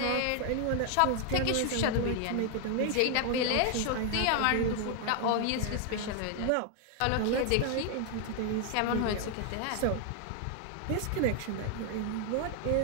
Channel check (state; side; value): different; both; correlation 0.00